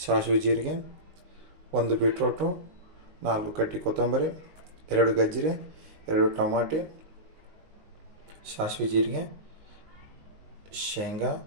ಸಾಸಿವೆ ಜೀರಿಗೆ, 1 ಬೀಟ್ರೋಟು, 4 ಕಡ್ಡಿ ಕೊತ್ತಂಬರಿ, 2 ಗಜ್ಜರಿ, 2 ಟಮಾಟಿ, ಸಾಸಿವೆ ಜೀರಿಗೆ, ಶೇಂಗಾ,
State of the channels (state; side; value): late; left; 19 ms